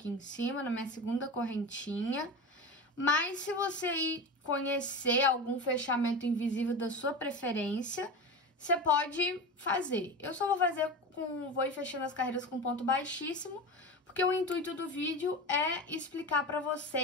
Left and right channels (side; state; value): both; normal; correlation 0.26